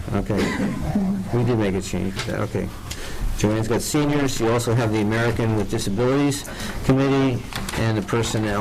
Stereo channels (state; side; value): identical; both; correlation 1.00